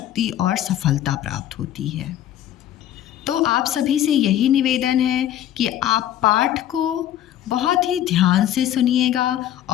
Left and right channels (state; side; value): quieter; right; 11.8 dB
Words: और सफलता प्राप्त होती है। तो आप सभी से यही निवेदन है कि आप पाठ को बहुत ही ध्यान से सुनिएगा